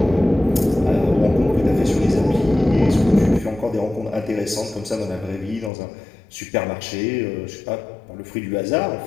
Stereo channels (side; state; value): right; drops out; at 5.7 s